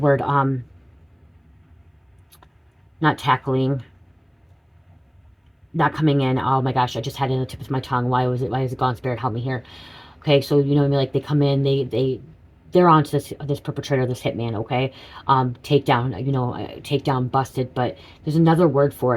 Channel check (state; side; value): identical; both; correlation 1.00